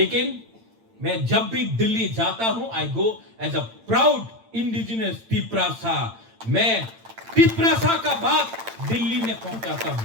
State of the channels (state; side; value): late; left; 8.8 ms